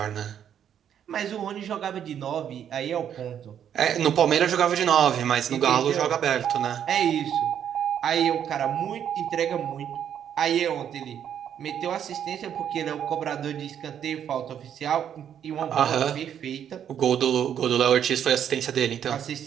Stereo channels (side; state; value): left; quieter; 9.2 dB